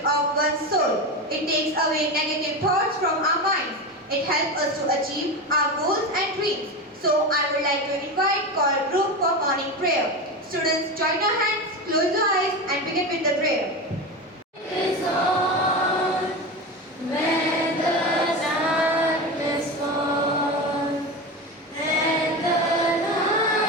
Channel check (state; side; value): normal; both; correlation 0.22